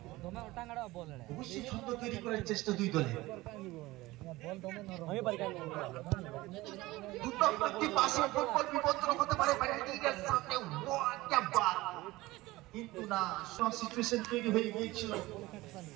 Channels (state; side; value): quieter; left; 19.3 dB